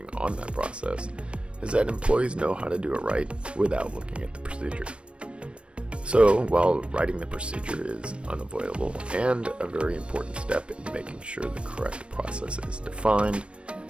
on that process is that employees know how to do it right without looking at the procedure. So, while writing the procedure is unavoidable and a very important step in making sure the correct process is defined,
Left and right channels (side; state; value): left; late; 0.059 ms